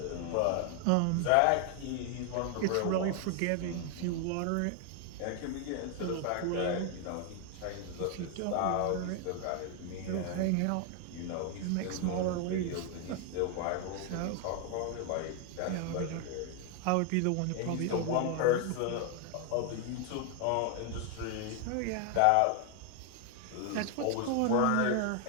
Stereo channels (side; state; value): both; different; correlation 0.00